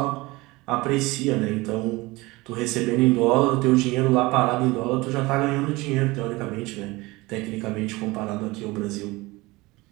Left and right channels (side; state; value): left; quieter; 21.9 dB